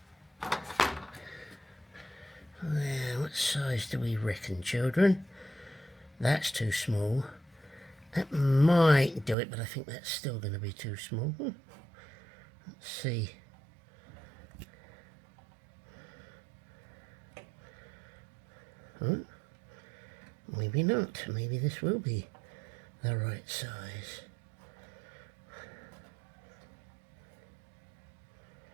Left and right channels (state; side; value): drops out; left; at 9.3 s